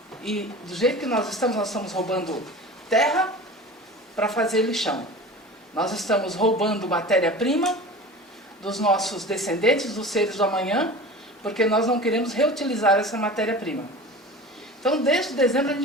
E do jeito que nós estamos roubando terra para fazer lixão. Nós estamos roubando matéria-prima dos nossos descendentes, dos seres do amanhã, porque nós não queremos reutilizar essa matéria-prima. Então, desde dezembro, a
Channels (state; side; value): normal; both; correlation 0.36